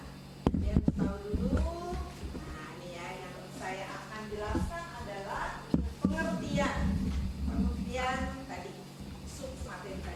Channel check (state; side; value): identical; both; correlation 1.00